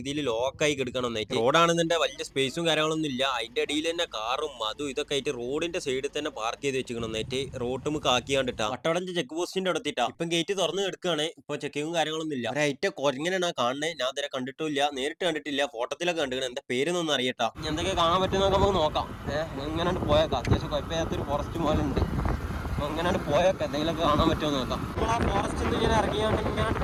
ലോക്കായി കിടക്കണം എന്നായിട്ട്. റോഡാണെന്നെ വലിയ സ്പേസും കാര്യങ്ങളൊന്നും ഇല്ല. അതിന്റെ അടിയിൽ തന്നെ കാറും അതും ഇതൊക്കെ ആയിട്ട് റോഡിന്റെ സൈഡിൽ തന്നെ പാർക്ക് ചെയ്ത് വെച്ചിക്കണം എന്നായിട്ട്. റോഡ് നമുക്ക് ആക്കിയാണ്ടിട്ടാ വട്ടവടഞ്ച് ചെക്ക് പോസ്റ്റിന്റെ അടുത്തിട്ടാ ഇപ്പം ഗേറ്റ് തുറന്ന് കിടക്കുകയാണ്. ഇപ്പൊ ചെക്കിങ്ങും കാര്യങ്ങളൊന്നും ഇല്ല. ഒരൈറ്റ കൊരങ്ങനെയാണ് കാണുന്നത്. ഞാൻ ഇതുവരെ കണ്ടിട്ടില്ല, നേരിട്ട് കണ്ടിട്ടില്ല, ഫോട്ടോത്തിലൊക്കെ കണ്ടിരിക്കണം. എന്താ പേരൊന്നും അറിയട്ടാ. എന്തൊക്കെ കാണാൻ പറ്റുന്നൊക്കെ നമുക്ക് നോക്കാം. ഇങ്ങനെ പോയേക്കാം. അത്യാവശ്യം കുഴപ്പമില്ലാത്തൊരു ഫോറസ്റ്റ് പോലെ ഉണ്ട്. അപ്പോൾ ഇങ്ങനെ പോയൊക്കെ എന്തെങ്കിലുമൊക്കെ കാണാൻ പറ്റുമോ നോക്കാം. നമ്മൾ ആ ഫോറസ്റ്റിൽ നിന്ന് ഇങ്ങനെ ഇറങ്ങിയാണ്ട് ഇങ്ങനെ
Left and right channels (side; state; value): both; identical; correlation 1.00